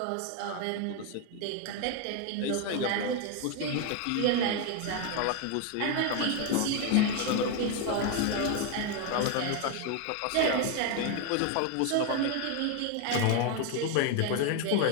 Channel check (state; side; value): different; both; correlation 0.01